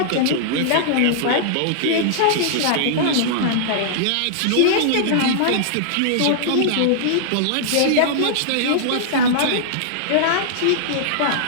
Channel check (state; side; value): different; both; correlation -0.01